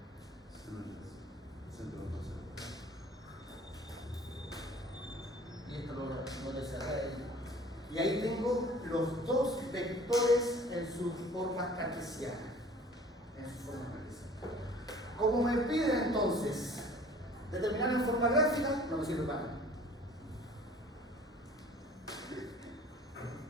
y esto lo cerré. Y ahí tengo los dos vectores en su forma cartesiana. Como me piden entonces determinar en forma gráfica, no me sirve para nada.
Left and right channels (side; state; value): both; normal; correlation 0.49